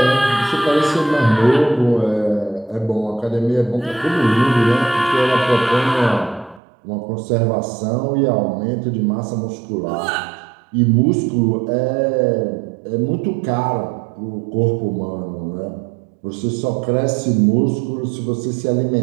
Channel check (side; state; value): left; drops out; at 6.6 s